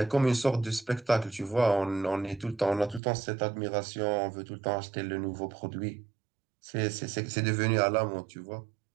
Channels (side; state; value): left; drops out; at 3.0 s